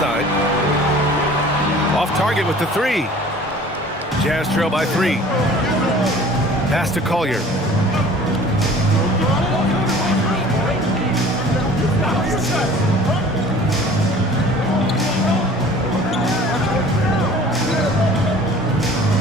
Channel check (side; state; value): both; normal; correlation 0.47